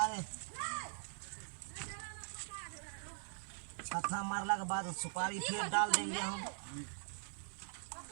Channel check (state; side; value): silent; left; digital silence